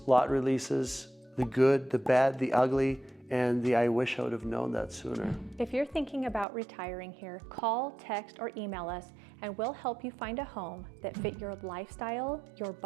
lot releases, the good, the bad, the ugly, and the I wish I would have known that sooner. If you're thinking about retiring here, call, text, or email us, and we'll help you find a home that fit your lifestyle, your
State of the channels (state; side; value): drops out; left; at 6.5 s